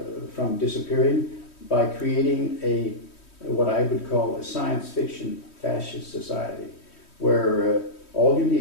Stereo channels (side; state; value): right; late; 3.1 ms